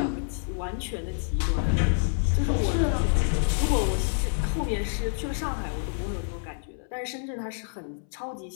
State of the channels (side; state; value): right; silent; 60 dB below the other